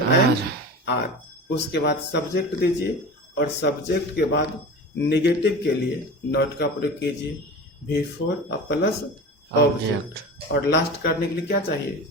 आर। उसके बाद सब्जेक्ट दीजिए और सब्जेक्ट के बाद नेगेटिव के लिए नॉट का प्रयोग कीजिए, बिफोर प्लस ऑब्जेक्ट। और लास्ट करने के लिए क्या चाहिए,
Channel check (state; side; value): normal; both; correlation 0.32